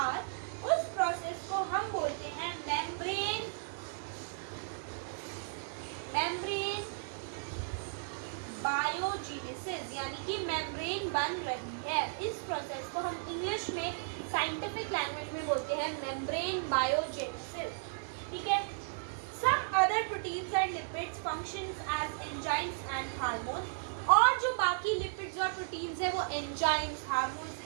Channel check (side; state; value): left; silent; digital silence